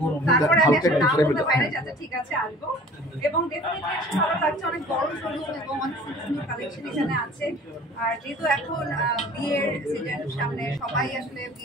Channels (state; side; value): normal; both; correlation 0.47